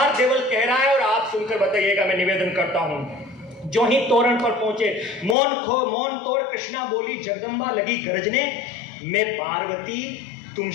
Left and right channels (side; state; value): right; drops out; at 5.4 s